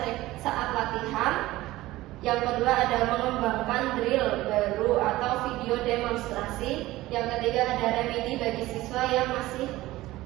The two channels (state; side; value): quieter; left; 17.4 dB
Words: saat latihan. Yang kedua ada mengembangkan drill baru atau video demonstrasi. Yang ketiga ada remedi bagi siswa yang masih